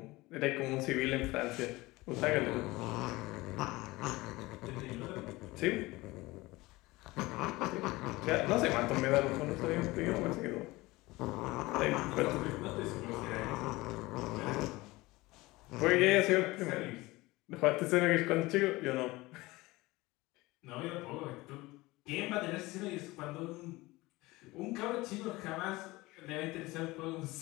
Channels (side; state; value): right; quieter; 20.8 dB